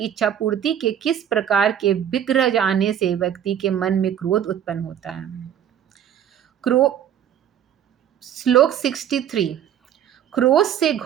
इच्छा पूर्ति के किस प्रकार के विग्रह जाने से व्यक्ति के मन में क्रोध उत्पन्न होता है। श्लोक 63। क्रोध से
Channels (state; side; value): quieter; left; 9.7 dB